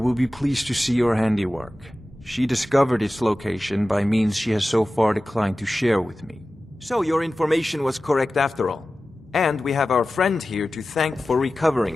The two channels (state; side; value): normal; both; correlation 0.95